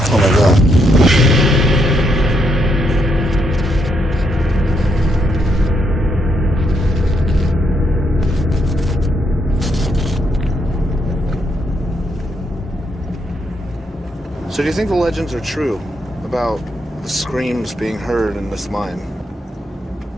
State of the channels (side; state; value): both; normal; correlation 0.77